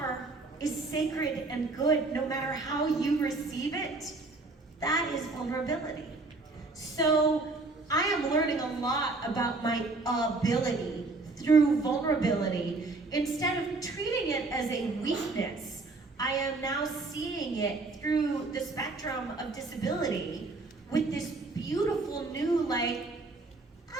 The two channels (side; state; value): left; quieter; 3.4 dB